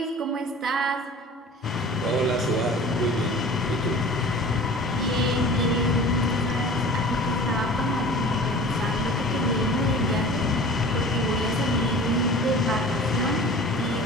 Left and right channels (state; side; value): normal; both; correlation 0.41